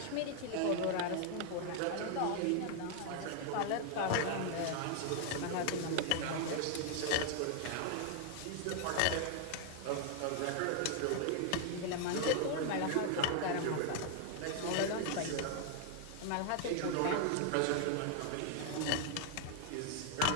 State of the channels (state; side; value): different; both; correlation 0.00